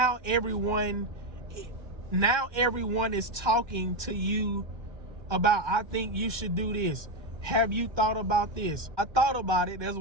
everyone is talking to you about, I think you should do this. Have you thought about this? I thought about it. That's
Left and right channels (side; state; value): left; late; 1.2 ms